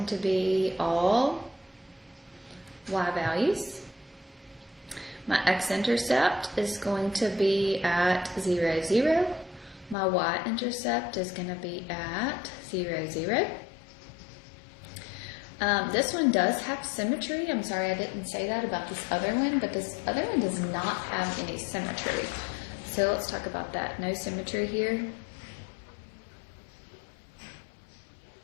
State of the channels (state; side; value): drops out; right; at 10.0 s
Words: to be all y values. My x-intercept is going to be at 0, 0. My y-intercept is going to be at 0, 0. This one does have symmetry. I'm sorry I didn't say that about this other one, but this other one does not have any symmetry. So let's talk about that. No symmetry here.